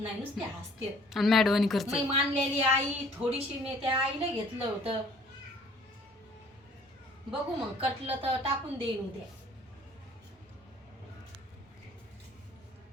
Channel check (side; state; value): both; normal; correlation 0.56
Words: नुसते हसते. आणि मॅडवानी करते. मी मानलेली आई थोडीशी मी त्या आईला घेतलं होतं. बघू मग कटलं तर टाकून देईन उद्या